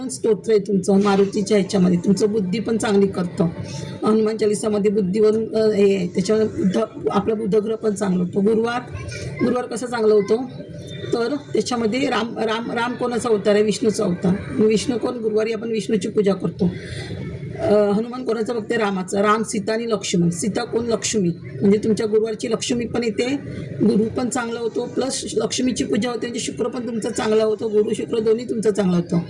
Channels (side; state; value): both; identical; correlation 1.00